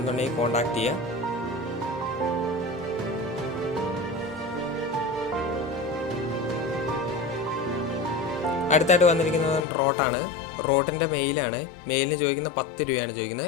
കോൺടാക്ട് ചെയ്യുക. അടുത്തായിട്ട് വന്നിരിക്കുന്നത് റോട്ടാണ്. റോട്ടിൻ്റെ മെയിലാണ്. മെയിലിന് ചോദിക്കുന്ന 10 രൂപയാണ്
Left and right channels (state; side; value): drops out; right; at 9.6 s